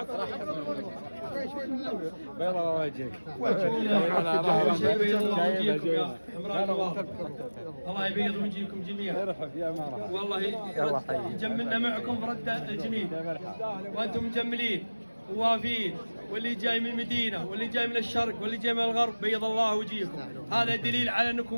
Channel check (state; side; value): inverted; both; correlation -1.00